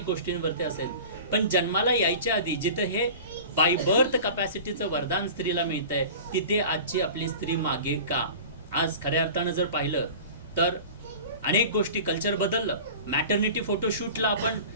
गोष्टींवरती असेल, पण जन्माला यायच्या आधी जिथं हे बाय बर्थ कपॅसिटीचं वरदान स्त्रीला मिळतंय तिथे आजची आपली स्त्री मागे का? आज खऱ्या अर्थानं जर पाहिलं तर अनेक गोष्टी कल्चर बदललं. मॅटर्निटी फोटोशूटला आपण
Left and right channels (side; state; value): both; inverted; correlation -0.38